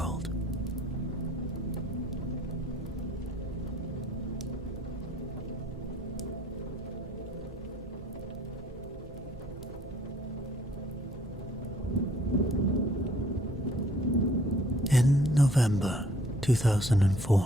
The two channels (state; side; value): normal; both; correlation 0.58